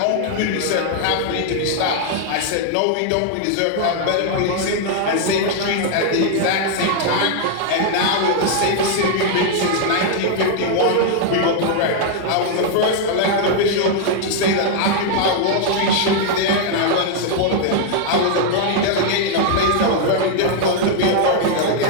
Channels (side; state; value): both; different; correlation 0.00